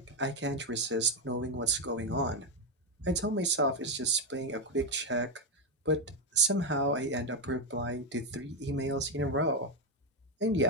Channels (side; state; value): both; normal; correlation 0.05